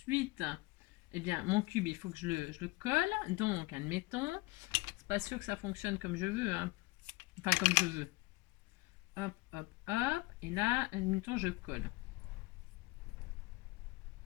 eh bien, mon cube, il faut que je le colle. Donc, admettons, c'est pas sûr que ça fonctionne comme je veux. Hein. Enfin, comme je veux. Hop, hop, hop. Et là, admettons, je colle.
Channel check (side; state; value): right; quieter; 22.6 dB